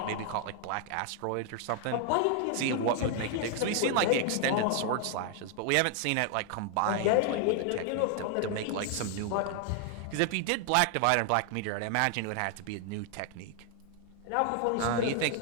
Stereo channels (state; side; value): different; both; correlation 0.00